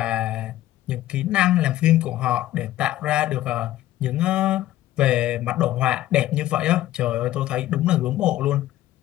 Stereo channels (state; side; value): quieter; right; 14.4 dB